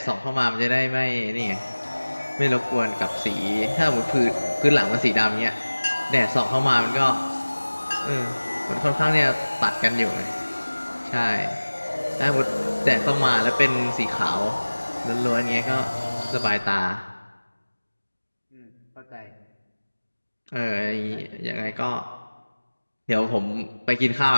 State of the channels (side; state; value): both; inverted; correlation -1.00